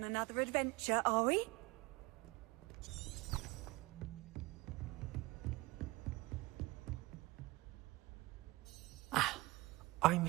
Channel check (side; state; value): left; quieter; 21.8 dB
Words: another adventure, are we? I'm